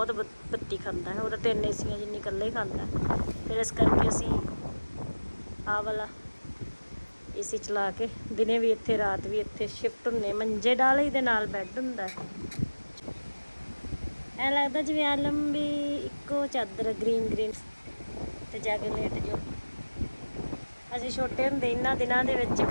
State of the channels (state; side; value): inverted; both; correlation -1.00